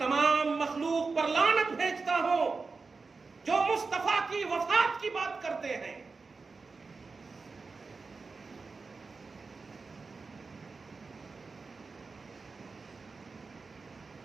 مخلوق پر لعنت بھیجتا ہوں جو مصطفیٰ کی وفات کی بات کرتے ہیں.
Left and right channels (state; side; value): quieter; left; 4.3 dB